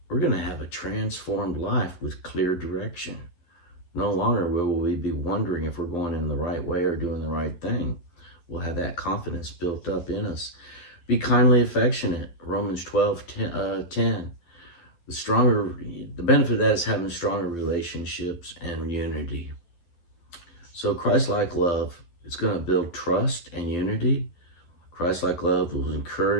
we're going to have a transformed life with clear direction. No longer will we be wondering if we're going in the right way or doing the right thing. We'll have that confidence built up in us. Be kindly affectionate. Romans 12:10. The benefit of that is having stronger relationships and unity. So Christ-like love, it's going to build trust and unity. Christ-like love will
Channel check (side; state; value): right; late; 12 ms